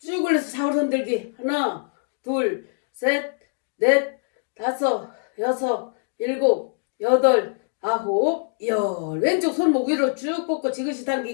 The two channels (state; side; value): silent; right; digital silence